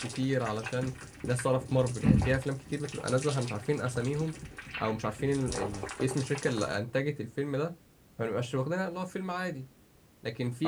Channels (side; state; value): both; identical; correlation 1.00